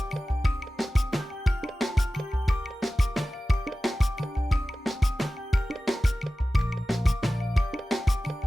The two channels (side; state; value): both; normal; correlation 0.96